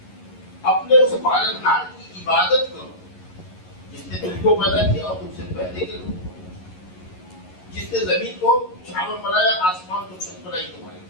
اپنے اس پالنہار کی عبادت کرو جس نے تم کو پیدا کیا اور تم سے پہلے کے لوگوں کو، جس نے زمین کو چھاؤں بنایا، آسمان کو چھت بنائی تمہارے،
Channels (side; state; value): right; late; 11 ms